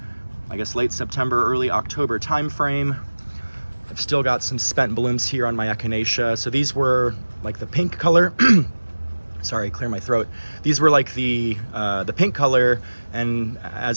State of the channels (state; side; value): inverted; both; correlation -1.00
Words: I guess, late September, early October time frame. I've still got some spent blooms here on my echinacea. So these were like the pink color. Sorry, clear my throat. These were like the pink color, and